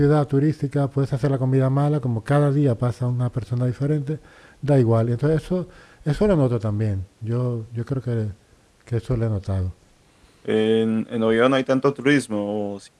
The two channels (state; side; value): identical; both; correlation 1.00